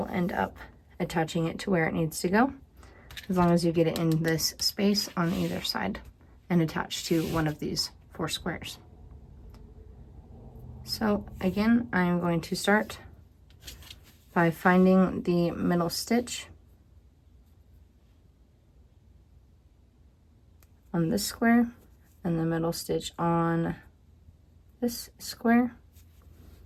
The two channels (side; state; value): both; identical; correlation 1.00